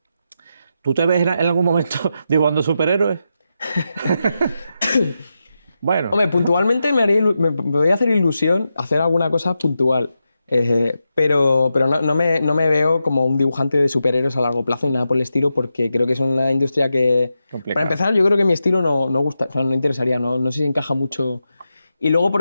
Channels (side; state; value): both; inverted; correlation -0.88